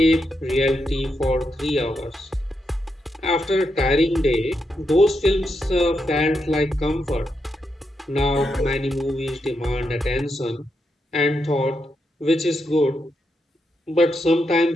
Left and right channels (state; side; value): normal; both; correlation 0.83